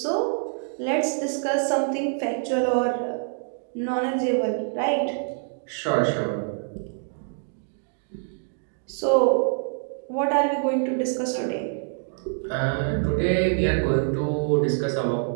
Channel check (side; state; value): left; silent; 61 dB below the other